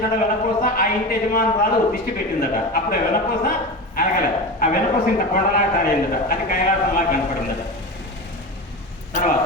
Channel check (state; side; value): normal; both; correlation 0.25